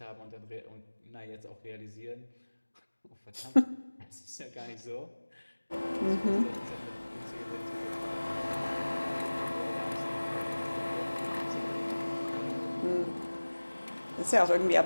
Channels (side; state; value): both; inverted; correlation -1.00